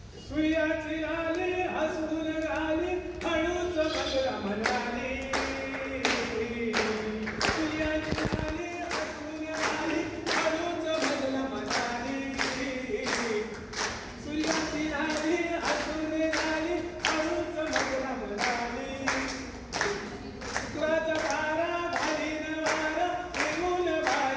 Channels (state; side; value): identical; both; correlation 1.00